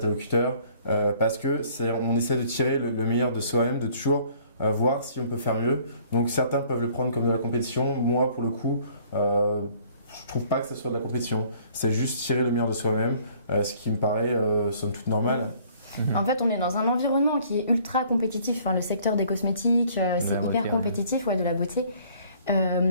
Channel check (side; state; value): both; inverted; correlation -0.57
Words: parce que on essaie de tirer le meilleur de soi-même, de toujours voir si on peut faire mieux. Donc certains peuvent le prendre comme de la compétition, moi pour le coup je trouve pas que ce soit de la compétition, c'est juste tirer le meilleur de soi-même, ce qui me paraît somme toute normal. En fait, on est dans un environnement qui est ultra compétitif. Enfin, le secteur des cosmétiques, c'est hyper compétitif, de la beauté.